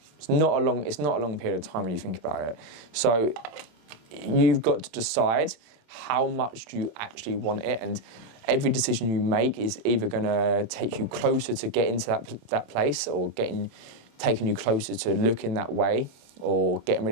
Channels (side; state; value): left; late; 27 ms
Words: It's not a long period of time when you think about it. So you've got to decide how much do you actually want it, and every decision you make is either going to take you closer to getting to that place, or taking you closer to looking that way, or getting